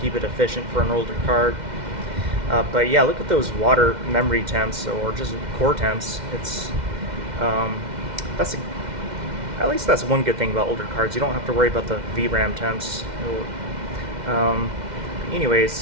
it efficient for an older card. But yeah, look at those water memory temps or just core temps. It's at least that's one good thing about older cards. You don't have to worry about the VRAM temps.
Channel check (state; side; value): late; left; 2.1 ms